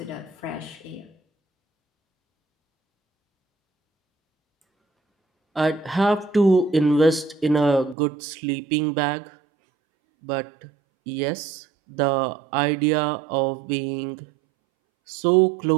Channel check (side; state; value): left; drops out; at 8.0 s